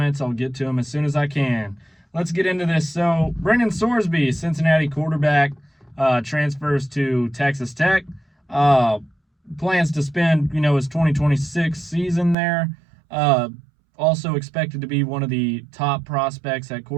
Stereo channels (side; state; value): left; drops out; at 12.4 s